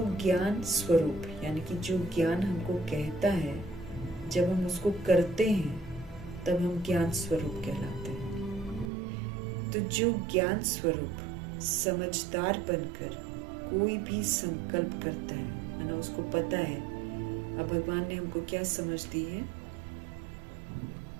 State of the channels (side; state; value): left; drops out; at 8.9 s